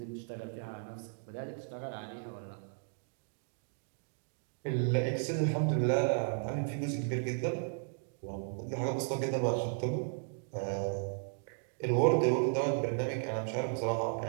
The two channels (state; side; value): silent; left; digital silence